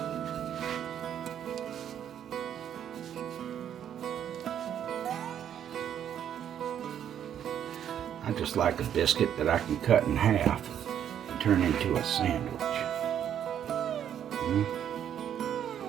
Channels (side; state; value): left; quieter; 9.6 dB